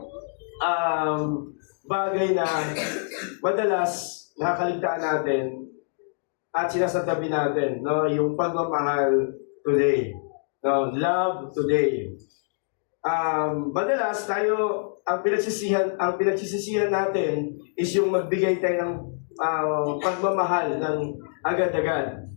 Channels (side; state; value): right; silent; digital silence